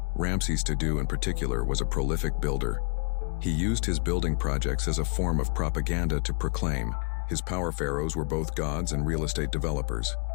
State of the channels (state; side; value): quieter; right; 36.4 dB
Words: Ramses II in particular was a prolific builder. He used his building projects as a form of propaganda to proclaim his power. Pharaohs were both gods and real estate developers.